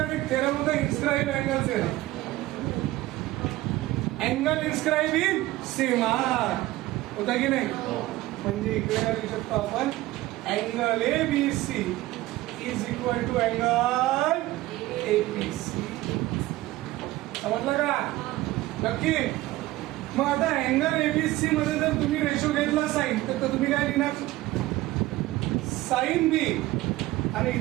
एक थेरम होता, inscribed angle theorem. Angle inscribed in सीमार होता की नाही? म्हणजे इकडे काय लिहू शकतो आपण, angle ABC is equal to angle APC. समजलं का? नक्की. मग आता अँगल एबीसी मध्ये जर तुम्ही रेशो घेतला साइन, तर तुम्ही काय लिहिणार, साइन बी. आणि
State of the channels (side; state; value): left; quieter; 17.4 dB